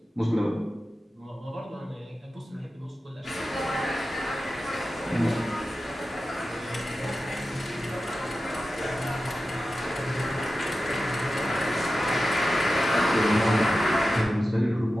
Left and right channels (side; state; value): both; normal; correlation 0.93